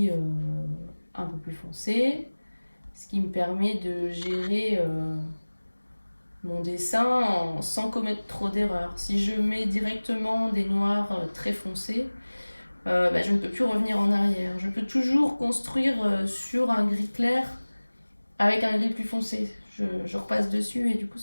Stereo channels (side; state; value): both; inverted; correlation -1.00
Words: un peu plus foncé, ce qui me permet de gérer mon dessin sans commettre trop d'erreurs. Si je mets directement des noirs très foncés, je ne peux plus revenir en arrière. Je peux toujours construire sur un gris clair avec un gris plus foncé. Je repasse dessus et du coup